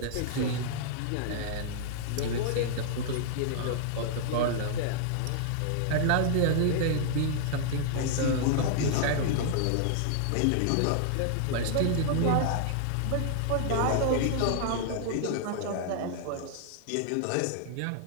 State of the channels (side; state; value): both; different; correlation -0.01